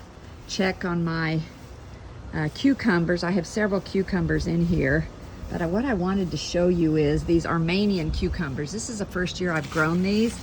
check on my cucumbers. I have several cucumbers in here, but what I wanted to show you is these Armenian cucumbers. This is the first year I've grown these,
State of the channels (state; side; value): identical; both; correlation 1.00